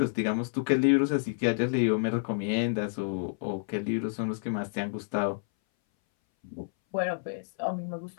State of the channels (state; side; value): silent; right; 58 dB below the other